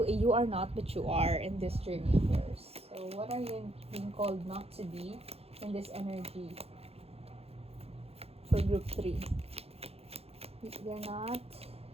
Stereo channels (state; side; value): late; left; 0.29 ms